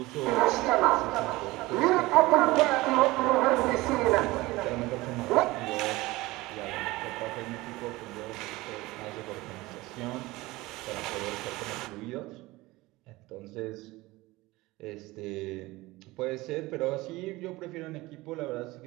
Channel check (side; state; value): left; quieter; 20.2 dB